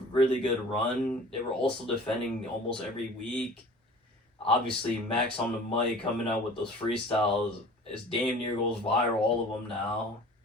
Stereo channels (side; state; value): both; normal; correlation 0.44